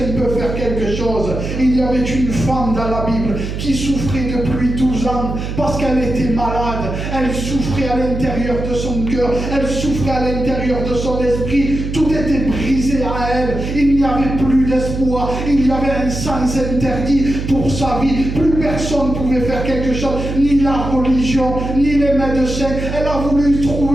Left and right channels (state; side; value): noise; right; hum, 5 dB below the sound